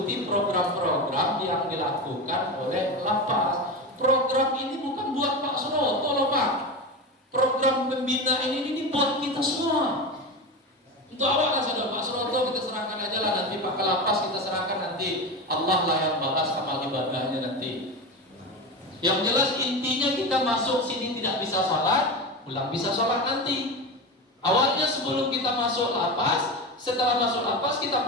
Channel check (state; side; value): normal; both; correlation 0.22